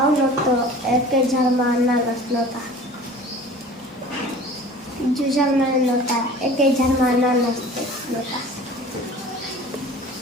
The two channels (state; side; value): normal; both; correlation 0.43